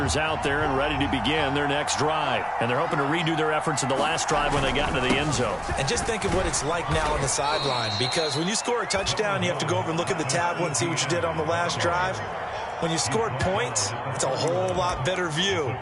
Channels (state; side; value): identical; both; correlation 1.00